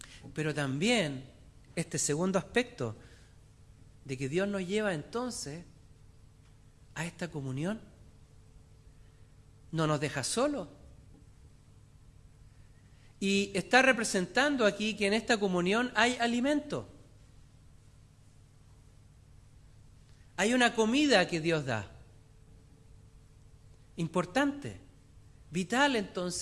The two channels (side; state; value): both; identical; correlation 1.00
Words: Pero también este segundo aspecto de que Dios nos lleva entonces a esta comunión, no nos deja solos. Y está representando aquí que en esta comunión hay alimento. Hay una comida que Dios da. Importante, vital